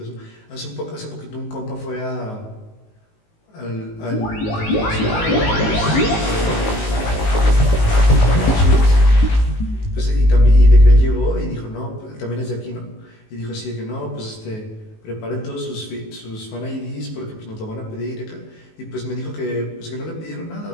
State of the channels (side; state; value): right; late; 19 ms